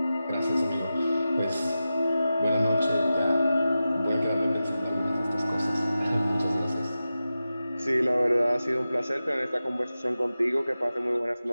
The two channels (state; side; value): inverted; both; correlation -0.93